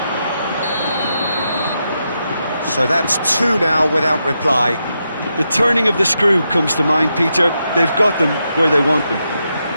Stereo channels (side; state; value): both; inverted; correlation -0.84